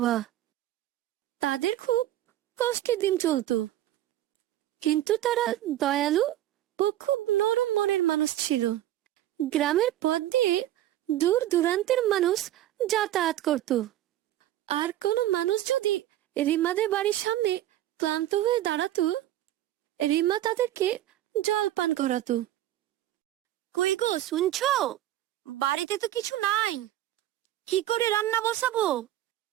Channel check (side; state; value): left; quieter; 13.5 dB